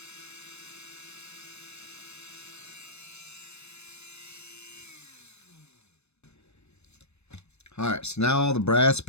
Alright, so now all the brass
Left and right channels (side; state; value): right; late; 0.81 ms